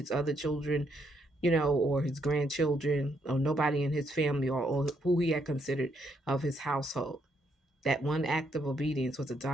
other children, or his grandchildren, or nobody in his family, or who he had considered of his household. That one act of obedience was a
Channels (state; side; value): normal; both; correlation 0.75